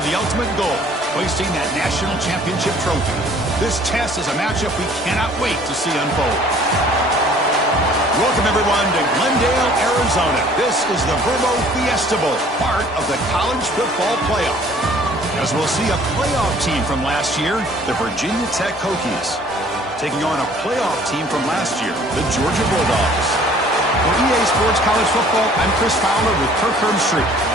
the ultimate goal, hoisting that national championship trophy. This test is a matchup we cannot wait to see unfold. Welcome, everyone, to Glendale, Arizona. This is the Verbo Fiesta Bowl, part of the college football playoff. As we'll see a playoff team from last year, the Virginia Tech Hokies, taking on a playoff team from last year, the Georgia Bulldogs. For EA Sports College Football, I'm Chris Fowler with Kirk Herbstreit.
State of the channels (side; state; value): both; normal; correlation 0.54